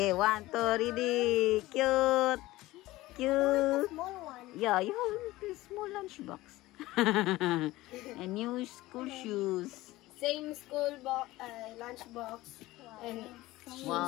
1, 2, ready. Cute. Cute. Small one. Yeah, you have a small lunchbox. And new school shoes. Same school lunch box. And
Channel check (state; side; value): quieter; right; 18.1 dB